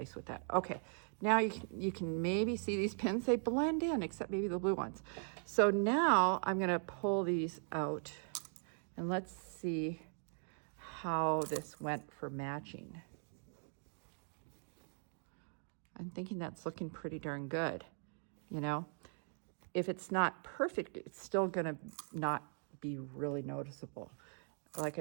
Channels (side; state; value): left; silent; 51 dB below the other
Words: with that. Okay, now you can maybe see these pins, they blend in, except maybe the blue ones. So now I'm gonna pull these out and let's see how this went for matching. I'm thinking that's looking pretty darn good. If it's not perfect, it's still gonna not be really noticeable. Like